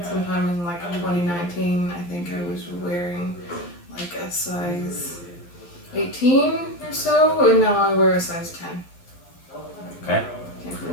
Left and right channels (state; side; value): late; right; 11 ms